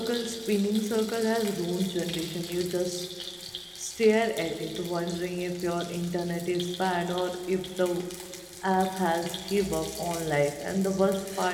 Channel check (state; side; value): identical; both; correlation 1.00